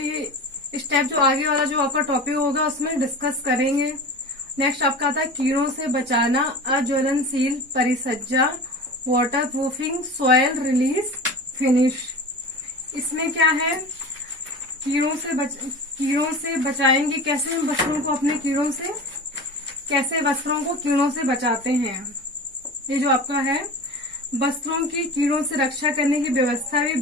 स्टेप जो आगे वाला जो आपका टॉपिक होगा उसमें डिस्कस करेंगे। नेक्स्ट आपका आता है कीड़ों से बचाना, अज्वलनशील परिसज्जा, waterproofing, soil release finish. इसमें क्या है, कीड़ों से बचाएंगे, कैसे हम वस्त्रों को अपने कीड़ों से, कैसे वस्त्रों को कीड़ों से बचाते हैं। ये जो आपका है वस्त्रों की कीड़ों से रक्षा करने की व्यवस्था भी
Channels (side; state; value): both; normal; correlation 0.33